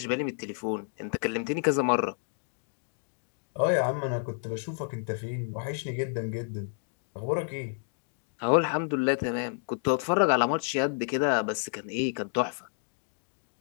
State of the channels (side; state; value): right; silent; 58 dB below the other